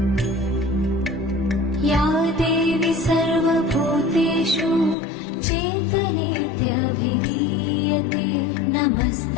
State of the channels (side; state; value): right; drops out; at 5.0 s